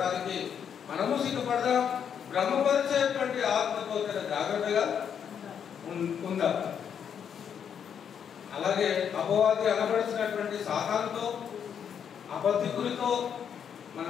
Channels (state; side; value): quieter; right; 8.0 dB